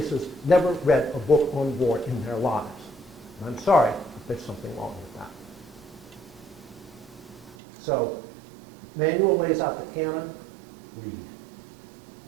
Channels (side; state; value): left; drops out; at 7.6 s